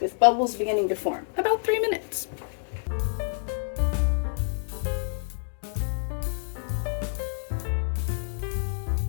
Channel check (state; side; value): silent; right; digital silence